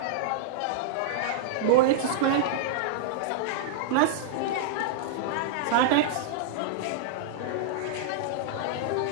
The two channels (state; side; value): different; both; correlation -0.02